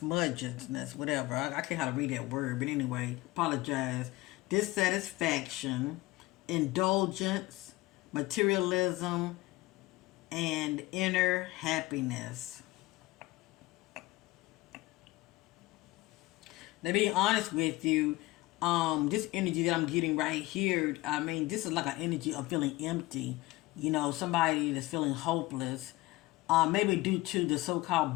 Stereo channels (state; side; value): quieter; right; 20.0 dB